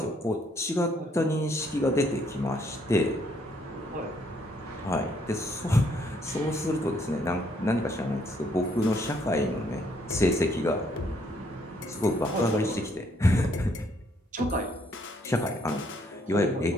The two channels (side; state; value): both; normal; correlation 0.69